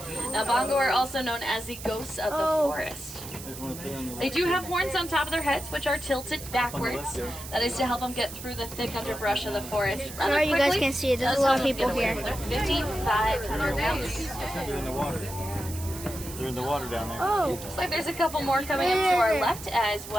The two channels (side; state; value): right; noise; hiss, 12 dB below the sound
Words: Now, bongo are also known as the ghosts of the forest. There's one up there on the They do have horns on top of their heads, which are tilted backwards. That is to help them get through the thick underbrush of the forest. Sorry you guys can't see it. There's a lot of people here. They're 5,500 pounds. They're in the water. They're in the water down there. Oh. Looks like there's a couple more coming up to our left as